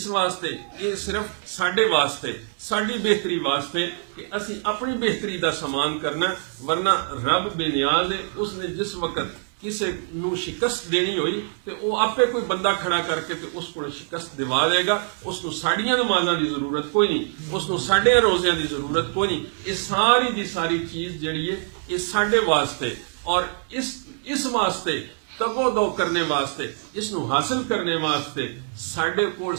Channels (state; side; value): silent; left; digital silence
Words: واسطے یہ صرف ساڈے واسطے ساڈی بہتری واسطے کہ اسی اپنی بہتری دا سامان کرنا. ورنہ رب بے نیاز ہے. اس نے جس وقت کسی نو شکست دینی ہوئی تے او آپے کوئی بندہ کھڑا کر کے تے اس کو شکست دوا دے گا. اس نو ساڑیاں نمازاں دی ضرورت کوئی نہیں. اس نو ساڑے روزیاں دی ضرورت کوئی نہیں. یہ ساری دی ساری چیز جڑی ہے یہ ساڈے واسطے اور اس واسطے تگو دو کرنے واسطے اس نو حاصل کرنے واسطے ساڈے کول